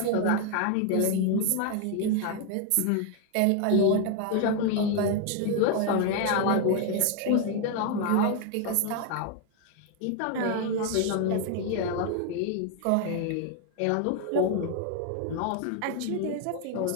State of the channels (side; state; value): both; different; correlation 0.01